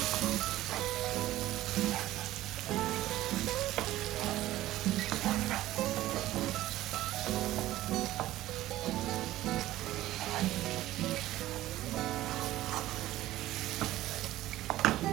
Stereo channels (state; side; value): quieter; left; 15.3 dB